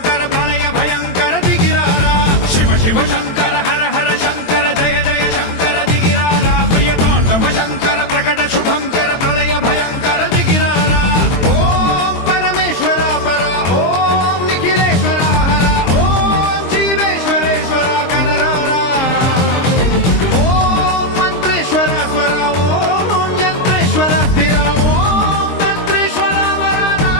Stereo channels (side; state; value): right; late; 23 ms